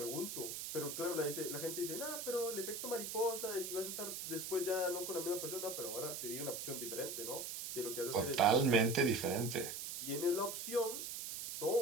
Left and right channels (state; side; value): noise; right; hiss, 5 dB below the sound